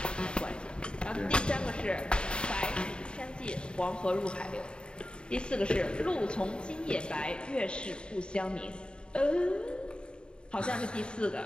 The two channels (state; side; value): late; right; 0.051 ms